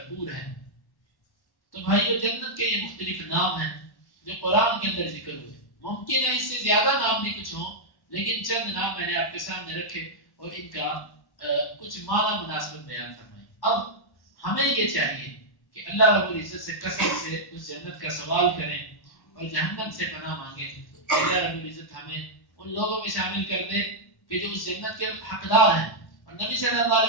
ہے. تو بھائیو، جنت کے یہ مختلف نام ہیں جو قرآن کے اندر ذکر ہوئے. ممکن ہے اس سے زیادہ نام بھی کچھ ہوں، لیکن چند نام میں نے آپ کے سامنے رکھے اور ان کا کچھ معنی مناسبت بیان فرمائی. اب ہمیں یہ چاہیے کہ اللہ رب العزت سے کثرت سے اس جنت کا سوال کریں اور جہنم سے پناہ مانگیں. اللہ رب العزت ہمیں ان لوگوں میں شامل کر دے کہ جو اس جنت کے حقدار ہیں. اور نبی صلی اللہ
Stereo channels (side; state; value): right; late; 1.1 ms